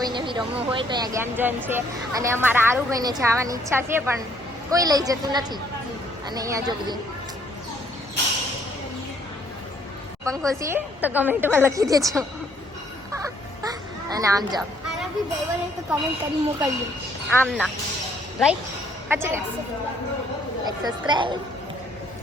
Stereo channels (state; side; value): normal; both; correlation 0.65